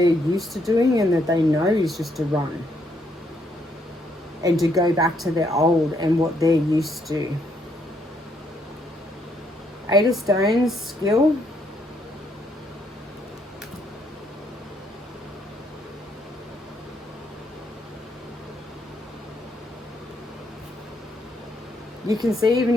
used to doing and that they know is just to run. And to go back to their old and what they're used to. Eight of Stones, skill. You can see even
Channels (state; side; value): normal; both; correlation 0.73